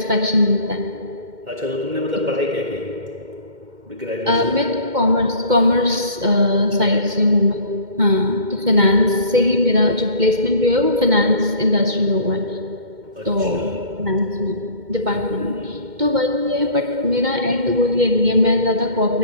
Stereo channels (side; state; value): left; late; 2.1 ms